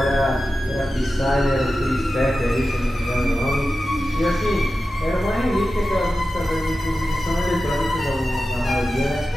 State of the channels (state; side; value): normal; both; correlation 0.93